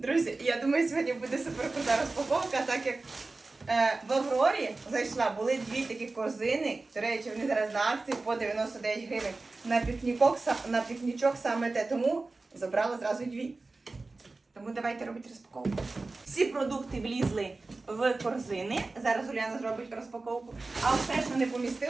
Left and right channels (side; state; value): left; quieter; 3.5 dB